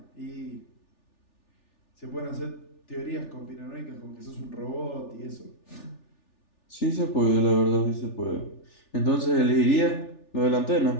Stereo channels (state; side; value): late; right; 3.4 ms